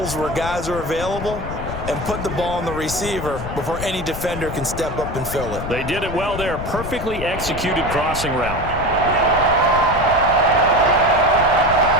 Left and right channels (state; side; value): noise; left; rumble, 8 dB below the sound